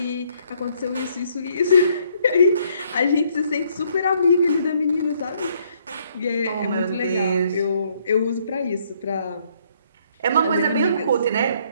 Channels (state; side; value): inverted; both; correlation -0.67